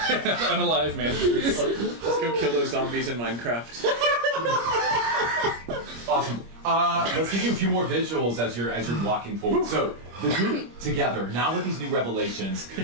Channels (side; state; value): left; late; 25 ms